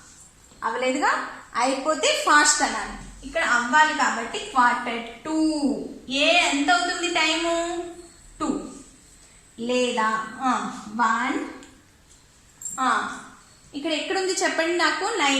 అవ్వలేదుగా, అయిపోతే ఫాస్ట్ అనాలి. ఇక్కడ అవ్వాలి కాబట్టి క్వార్టర్ 2. ఎంత అవుతుంది టైము? 2 లేదా 1. ఇక్కడ ఎక్కడుంది చెప్పండి నాకు?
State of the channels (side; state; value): both; identical; correlation 1.00